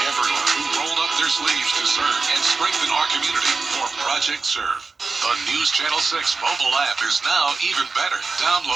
everyone who rolled up their sleeves to serve and strengthen our community for Project Serve. The News Channel 6 mobile app is now even better.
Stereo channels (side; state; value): left; quieter; 4.2 dB